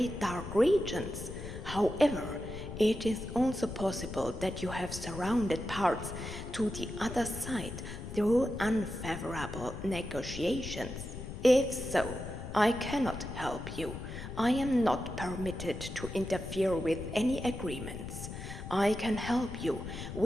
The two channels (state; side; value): noise; left; rumble, 9 dB below the sound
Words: dark regions. However, it is also possible that you have surrounded parts to the other side through unfavorable negotiations. If so, I cannot help you. I am not permitted to interfere with any agreements. I can help you